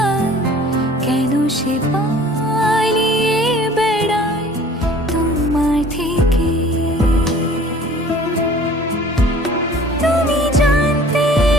কেন সে পালিয়ে বেড়ায় তোমার থেকে। তুমি জানতে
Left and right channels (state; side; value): normal; both; correlation 0.49